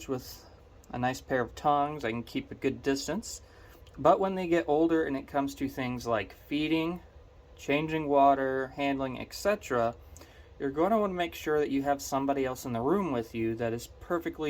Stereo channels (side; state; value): both; identical; correlation 1.00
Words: with a nice pair of tongs. I can keep a good distance. But when they get older and it comes to things like feeding, changing water, handling, etc., you're going to want to make sure that you have somebody else in the room with you that is